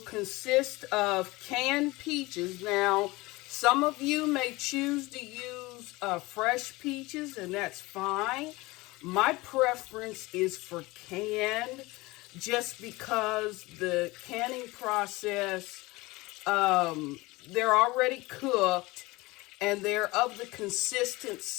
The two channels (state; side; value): quieter; right; 21.7 dB